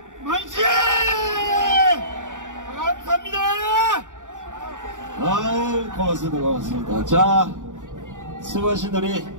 만세! 감사합니다. 아유, 고맙습니다. 자, 수고하신 우리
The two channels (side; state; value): left; late; 0.87 ms